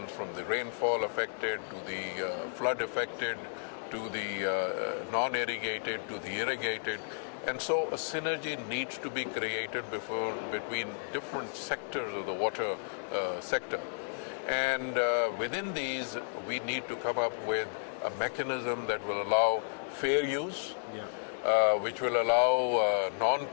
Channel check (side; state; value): right; silent; 56 dB below the other